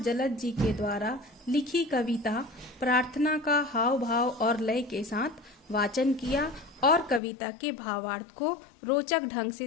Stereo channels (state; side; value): drops out; right; at 7.2 s